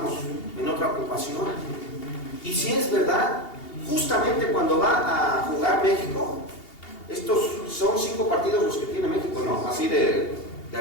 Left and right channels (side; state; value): right; late; 2.8 ms